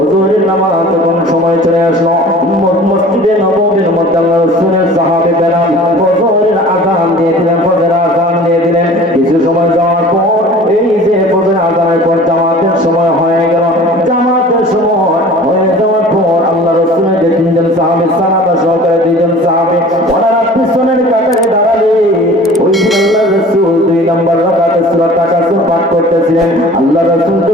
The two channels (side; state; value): both; normal; correlation 0.44